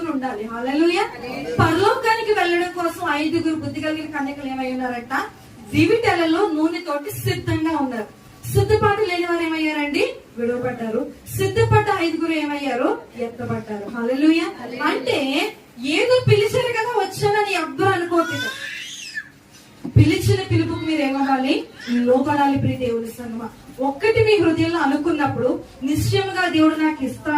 ఉండాలి. హల్లెలూయా. పరలోకానికి వెళ్ళడం కోసం 5 బుద్ధి కలిగిన కన్యకలు ఏమై ఉన్నారంట? దివిటెలలో నూనెతోటి సిద్ధంగా ఉన్నారు. సిద్ధపాటు లేని వారు ఏమయ్యారండి? విడవబడ్డారు. సిద్ధపడ్డ 5 ఏమయ్యారు? ఎత్తబడ్డారు. హల్లెలూయా. అంటే ఏదో పిలిచారు కదా వచ్చానని ఎవ్వరు అనుకోవట్లేదు. పిలిచిన పిలుపుకు మీరు ఏమవ్వాలి? లోపడాలి. ప్రియ దేవుని సంగమా, ఒక్కటి మీ హృదయంలో అనుకున్నప్పుడు నిశ్చయంగా దేవుడు నాకు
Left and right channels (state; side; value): identical; both; correlation 1.00